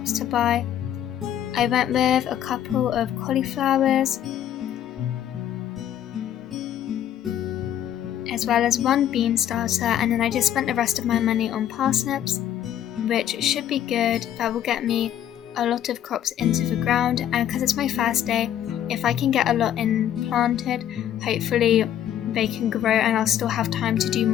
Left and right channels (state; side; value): quieter; right; 10.7 dB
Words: to buy. I went with a couple of cauliflowers, as well as one bean starter, and then I just spent the rest of my money on parsnips, which should be good. That will get me a lot of crops into the ground, and because it's my first day, if I can get a lot in planted, hopefully they can grow and I'll still have time to do